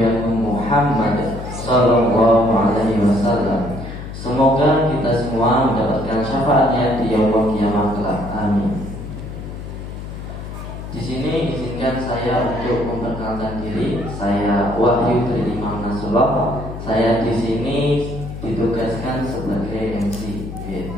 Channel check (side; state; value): left; noise; hum, 9 dB below the sound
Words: Agung Muhammad Sallallahu Alaihi Wasallam. Semoga kita semua mendapatkan syafaatnya di yaumul kiamat kelak. Amin. Di sini izinkan saya untuk memperkenalkan diri. Saya Wahyu dari Imam Nasrullah. Saya di sini ditugaskan sebagai MC.